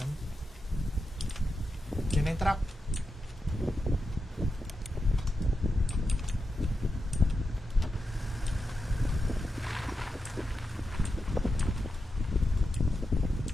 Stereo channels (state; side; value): normal; both; correlation 0.88